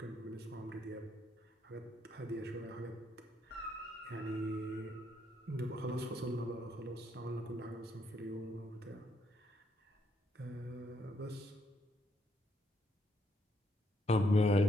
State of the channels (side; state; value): both; normal; correlation 0.75